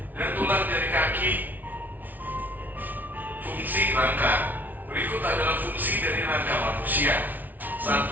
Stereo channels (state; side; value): late; left; 0.082 ms